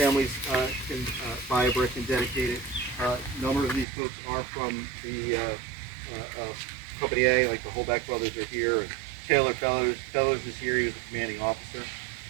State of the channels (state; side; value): drops out; left; at 3.9 s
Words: can buy a brick and dedicate it. A number of these folks are from the Company A, like the Holback brothers are here, and Taylor Fellers is here. He was a commanding officer.